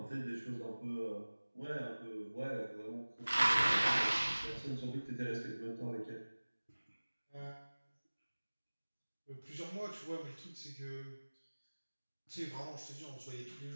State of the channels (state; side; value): inverted; both; correlation -1.00